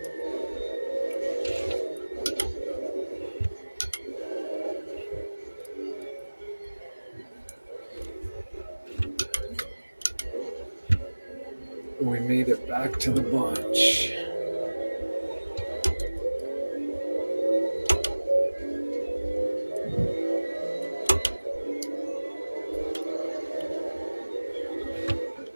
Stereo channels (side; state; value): both; inverted; correlation -1.00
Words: We made it back to the bunch.